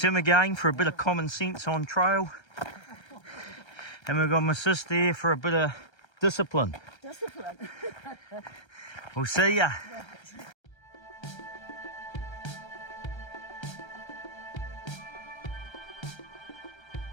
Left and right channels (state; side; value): late; right; 1.3 ms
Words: again for a bit of common sense on trail. And we've got my sister here for a bit of discipline. Discipline. We'll see ya.